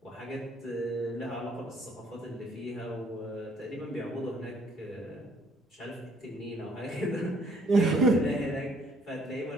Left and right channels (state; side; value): normal; both; correlation 0.63